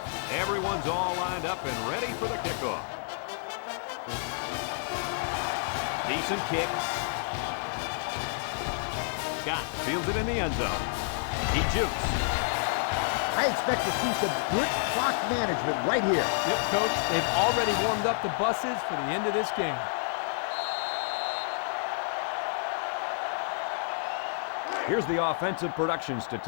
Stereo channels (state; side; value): silent; right; digital silence